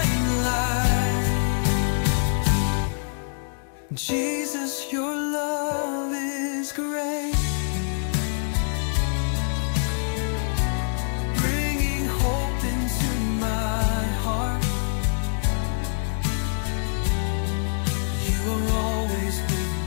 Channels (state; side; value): silent; right; digital silence